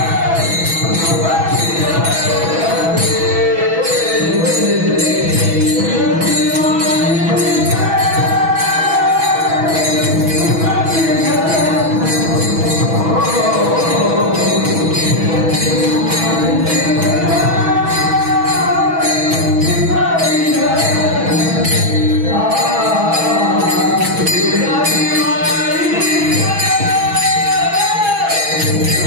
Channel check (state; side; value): late; left; 6.1 ms